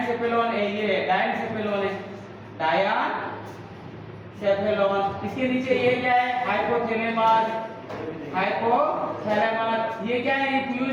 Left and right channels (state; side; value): identical; both; correlation 1.00